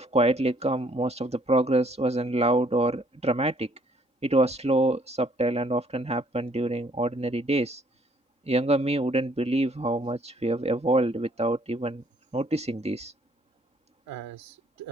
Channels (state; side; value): normal; both; correlation 0.64